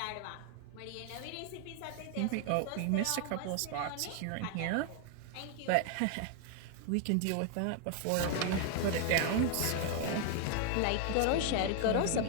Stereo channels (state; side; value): different; both; correlation 0.01